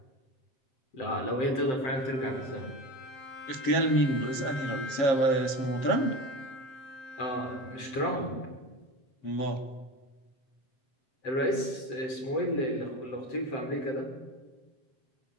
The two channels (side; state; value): right; late; 7.6 ms